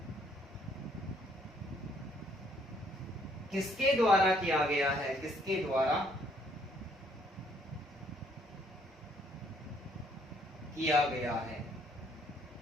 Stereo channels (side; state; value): both; normal; correlation 0.66